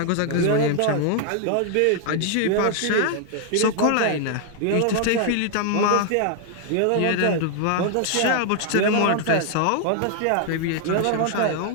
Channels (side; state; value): both; different; correlation 0.00